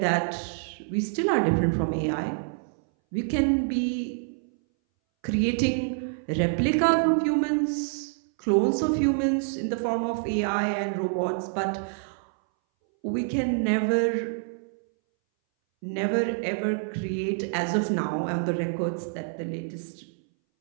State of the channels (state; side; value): silent; left; 60 dB below the other